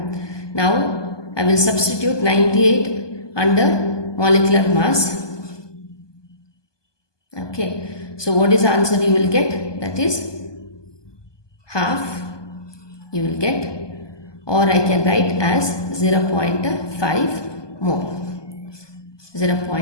Now I will substitute 98 under molecular mass. Okay. So what is the answer you will get? That is half you will get, or I can write as 0.5 mole.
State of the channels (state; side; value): late; right; 1.2 ms